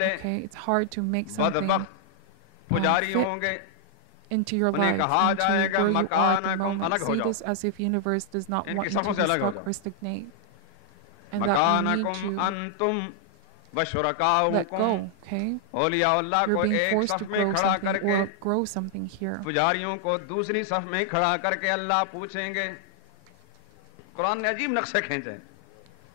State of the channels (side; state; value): both; different; correlation 0.00